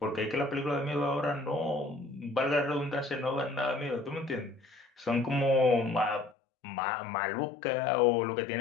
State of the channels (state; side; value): drops out; right; at 6.4 s